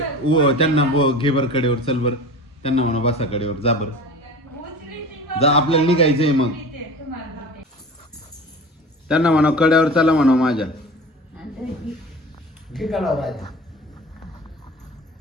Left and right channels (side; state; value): both; normal; correlation 0.36